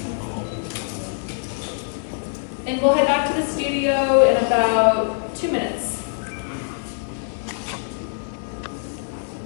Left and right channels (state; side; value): silent; right; digital silence